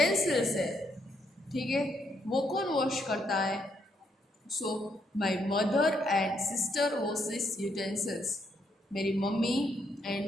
है, ठीक है, वो कौन वॉश करता है. So my mother and sister washes utensils. मेरी मम्मी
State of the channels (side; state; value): both; normal; correlation 0.75